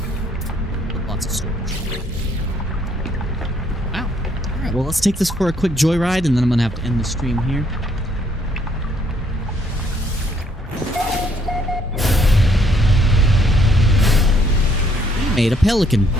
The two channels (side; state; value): both; normal; correlation 0.67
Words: Well, let's take this for a quick joyride, and then I'm gonna have to end the stream here. We made a Pelican.